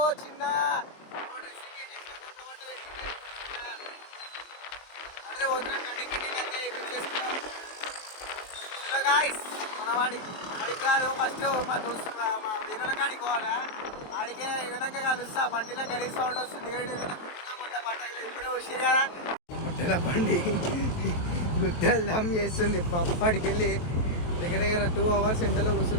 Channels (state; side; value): late; right; 23 ms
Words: చిన్న మన వాడికి కాదు ఫస్ట్ మా దోస్తు మా వీరుల కాడికి పోవాలా. ఆడికే ఏదైనా కలుస్తా. బండిలో గలీ సౌండ్ వస్తుంది. ఇప్పుడే వచ్చారు కదా ముట్టెల బండి గుట్టలు దమ్ చేస్తుంది. అప్పటికి వెళ్ళి దగ్గర దగ్గర 2 hours ఎండలో